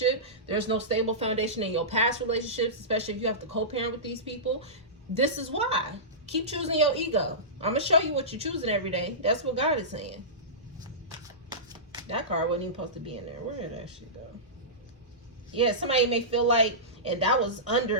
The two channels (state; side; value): normal; both; correlation -0.19